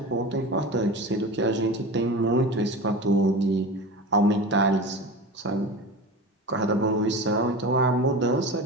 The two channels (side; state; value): both; normal; correlation 0.30